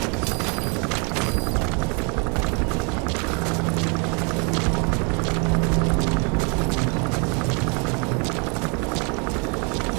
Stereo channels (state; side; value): quieter; left; 34.6 dB